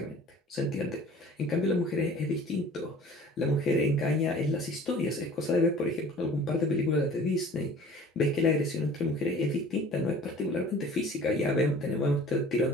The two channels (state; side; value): normal; both; correlation 0.47